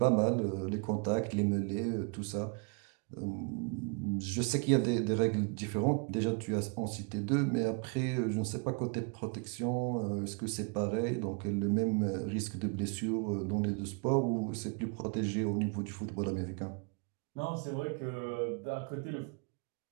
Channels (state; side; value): quieter; left; 35.1 dB